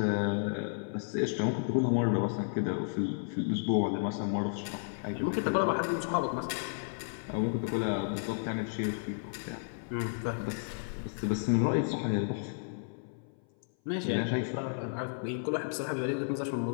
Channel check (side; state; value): right; silent; 56 dB below the other